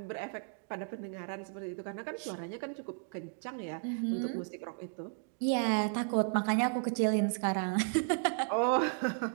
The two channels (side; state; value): left; silent; 55 dB below the other